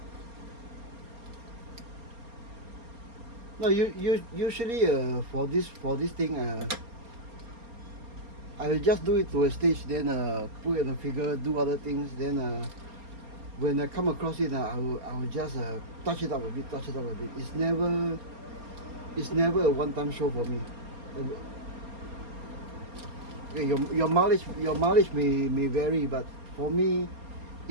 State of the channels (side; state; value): left; late; 4.3 ms